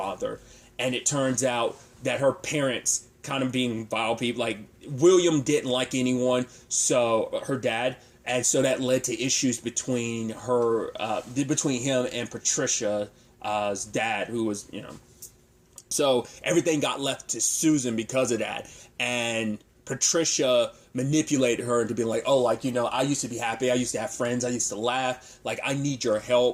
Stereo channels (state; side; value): identical; both; correlation 1.00